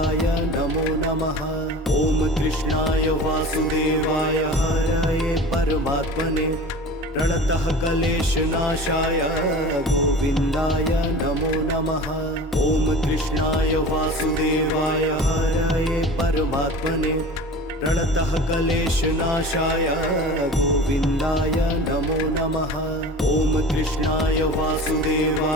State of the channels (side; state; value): both; normal; correlation 0.37